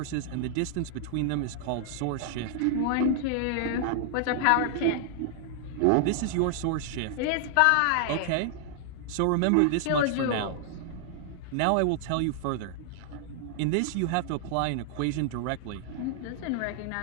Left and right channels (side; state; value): both; different; correlation 0.00